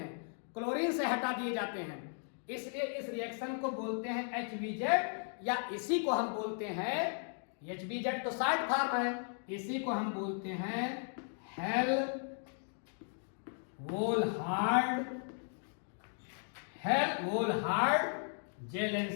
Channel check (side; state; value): right; silent; 54 dB below the other